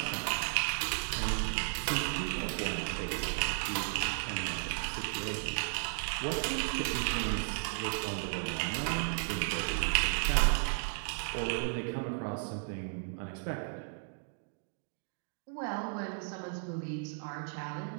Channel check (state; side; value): silent; left; digital silence